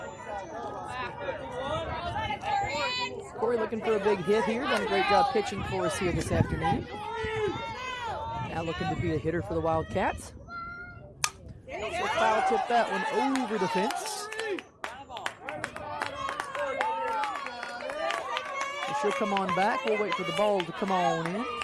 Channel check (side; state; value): both; identical; correlation 1.00